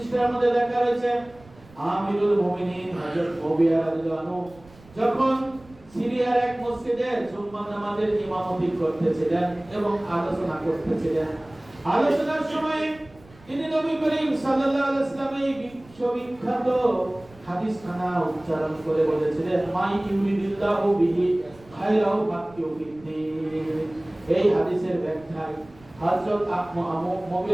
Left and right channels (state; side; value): noise; right; rumble, 25 dB below the sound